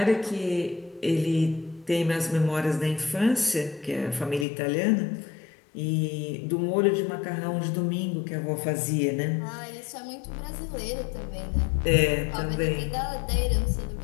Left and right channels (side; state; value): right; drops out; at 4.5 s